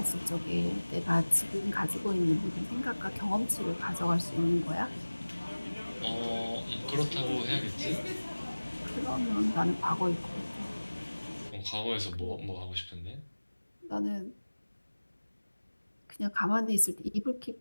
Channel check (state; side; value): inverted; both; correlation -1.00